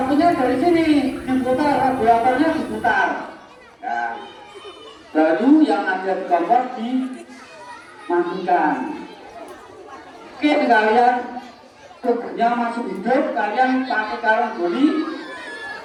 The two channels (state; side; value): identical; both; correlation 1.00